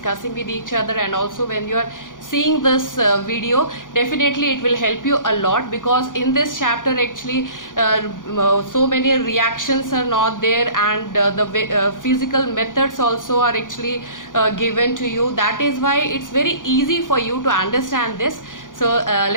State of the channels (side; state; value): right; late; 0.88 ms